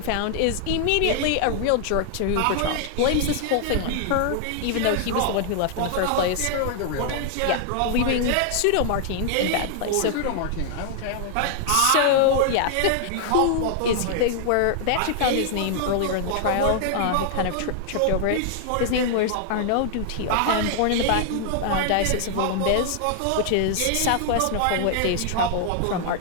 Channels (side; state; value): both; different; correlation 0.00